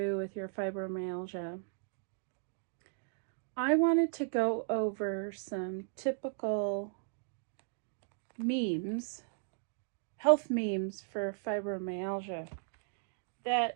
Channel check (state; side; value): silent; left; digital silence